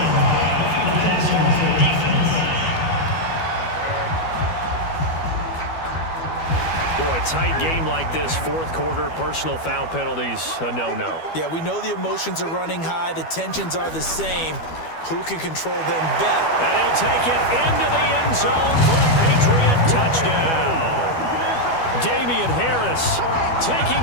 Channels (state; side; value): late; right; 12 ms